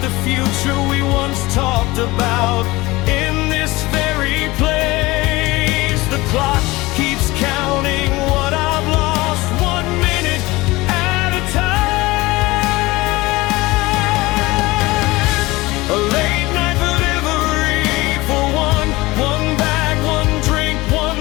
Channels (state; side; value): quieter; right; 20.8 dB